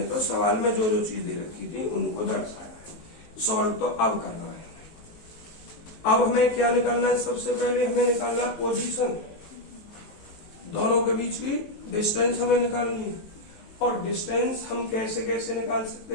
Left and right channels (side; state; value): right; late; 19 ms